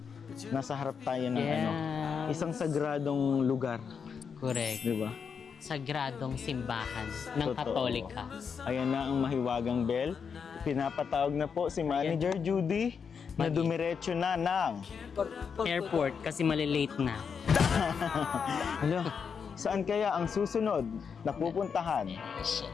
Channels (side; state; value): right; quieter; 6.4 dB